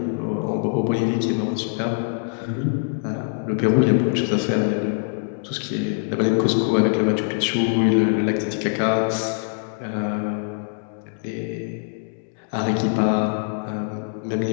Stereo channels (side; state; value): right; silent; digital silence